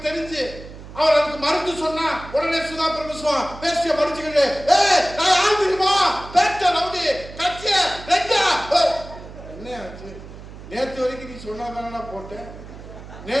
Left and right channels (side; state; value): right; noise; hum, 15 dB below the sound